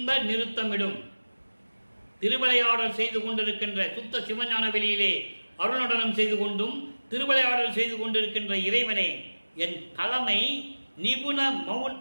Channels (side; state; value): both; inverted; correlation -1.00